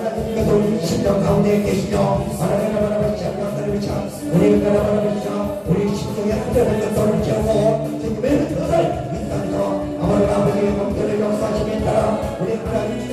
우리 심령 가운데 계시며 하나님을 걸쳐 너를 걸쳐 우리 걸쳐 우리 심령의 하나님을 것들을 채우고 주님의 뜻을 아버지의 공들을 역사하심에 따라 우리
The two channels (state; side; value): identical; both; correlation 1.00